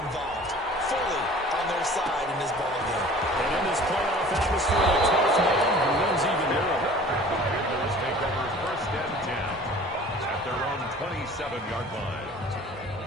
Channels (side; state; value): both; normal; correlation 0.46